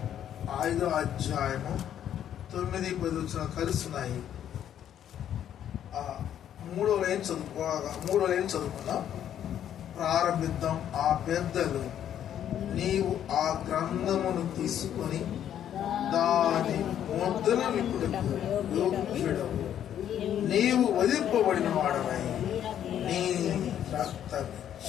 5వ అధ్యాయము 9-10 కలుస్తున్నాయి. 3వ లైన్ చదువుకుందాం. ప్రారంభిద్దాం. ఆ పెద్దలు, నీవు ఆ గ్రంథమును తీసుకొని దాని ముద్రను విప్పుటకు యోగ్యుడవు, నీవు వధింపబడిన వాడవై నీ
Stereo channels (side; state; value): right; quieter; 10.2 dB